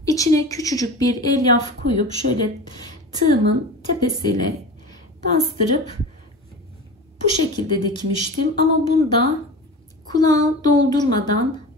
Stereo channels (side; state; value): both; normal; correlation 0.32